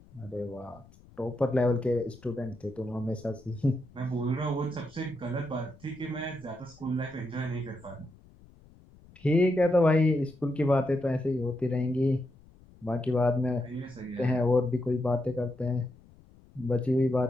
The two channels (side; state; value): left; noise; rumble, 25 dB below the sound